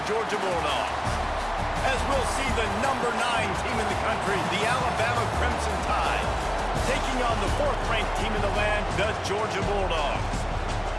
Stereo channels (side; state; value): both; identical; correlation 1.00